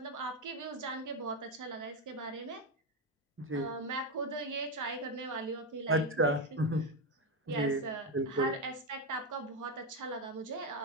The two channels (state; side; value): normal; both; correlation 0.09